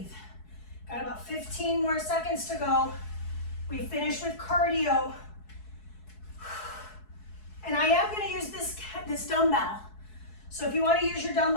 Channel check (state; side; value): late; right; 4.7 ms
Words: Got about 15 more seconds to go. We finish with cardio. And I am going to use this dumbbell. So if you want to use your